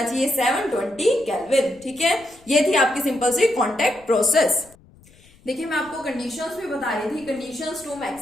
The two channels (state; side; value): noise; left; rumble, 27 dB below the sound